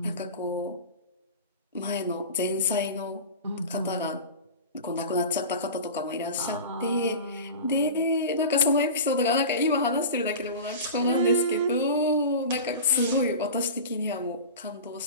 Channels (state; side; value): inverted; both; correlation -0.32